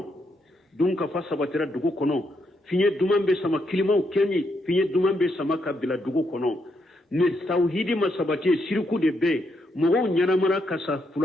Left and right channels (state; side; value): normal; both; correlation 0.78